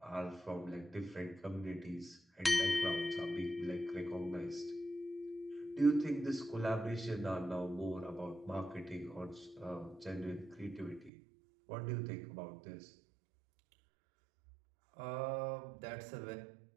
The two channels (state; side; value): drops out; left; at 11.1 s